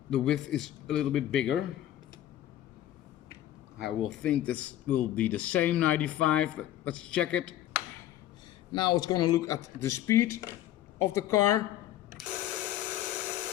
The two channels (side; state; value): right; quieter; 13.0 dB